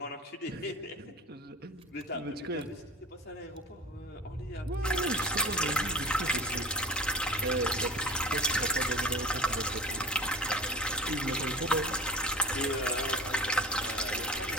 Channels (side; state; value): both; normal; correlation 0.36